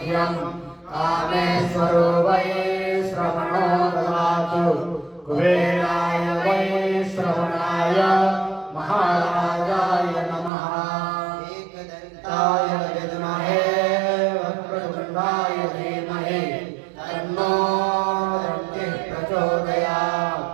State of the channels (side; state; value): left; drops out; at 10.5 s